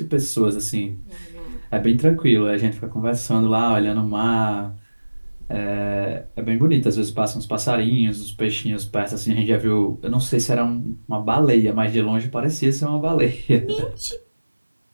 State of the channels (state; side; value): inverted; both; correlation -1.00